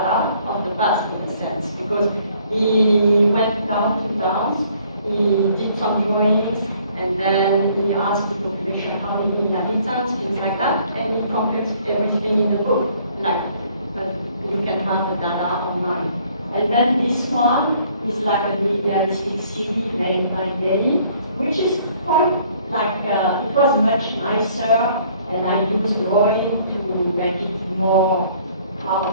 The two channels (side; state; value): both; inverted; correlation -0.61